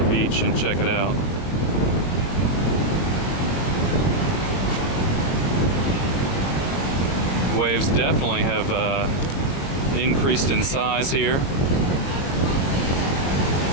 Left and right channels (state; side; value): late; right; 22 ms